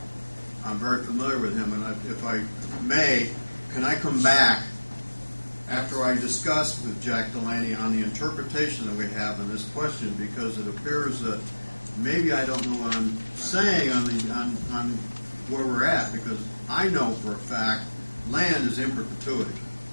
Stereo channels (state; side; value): inverted; both; correlation -1.00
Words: I'm very familiar with him, and if I may, can I come back after I discuss with Jack Delaney on the interpretation that we have in this question, because it appears that maybe I don't know what I'm saying on where we're at, because I know for a fact land is in perpetuity.